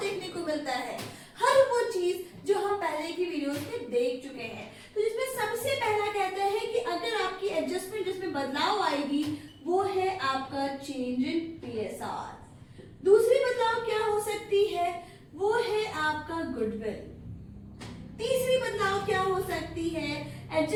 को मिलता है, हर वो चीज जो हम पहले की वीडियोस में देख चुके हैं। तो जिसमें सबसे पहला कहता है कि अगर आपकी एडजस्टमेंट जिसमें बदलाव आएगी वो है आपका चेंज इन पीएसआर। दूसरी बदलाव क्या हो सकती है, वो है आपका गुडविल। तीसरी बदलाव क्या हो सकती है,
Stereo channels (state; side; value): identical; both; correlation 1.00